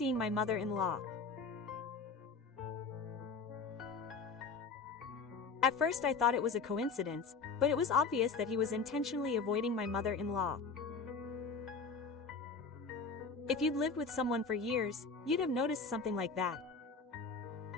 my mother-in-law. At first I thought it was a coincidence, but it was obvious that he was intentionally avoiding my mother-in-law. If you'd lived with someone for years, you'd have noticed something like that.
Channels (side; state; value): right; quieter; 4.6 dB